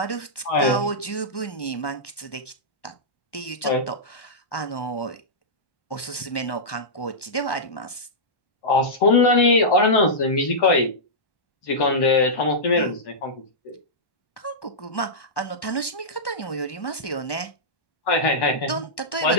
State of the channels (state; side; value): late; right; 1.1 ms